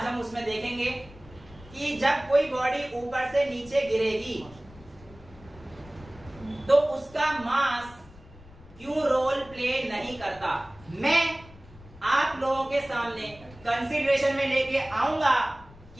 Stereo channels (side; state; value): left; noise; rumble, 21 dB below the sound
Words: उसमें देखेंगे कि जब कोई बॉडी ऊपर से नीचे गिरेगी तो उसका मास क्यों रोल प्ले नहीं करता। मैं आप लोगों के सामने कंसीडरेशन में लेके आऊंगा